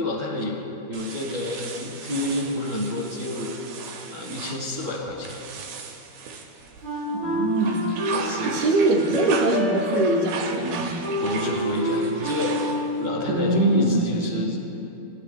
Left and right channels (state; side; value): late; left; 13 ms